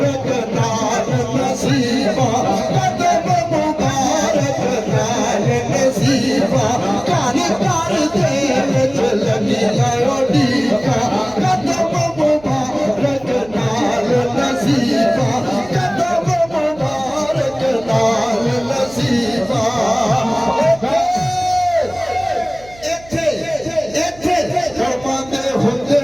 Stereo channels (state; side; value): noise; right; hum, 23 dB below the sound